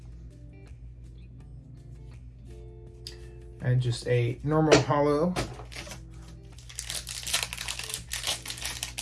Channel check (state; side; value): identical; both; correlation 1.00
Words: And just a normal hollow.